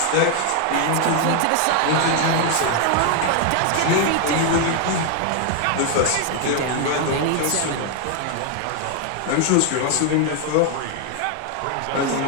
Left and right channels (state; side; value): different; both; correlation 0.00